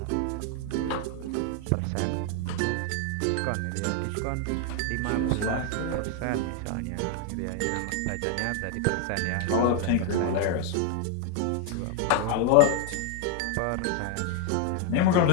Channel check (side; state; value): both; different; correlation 0.01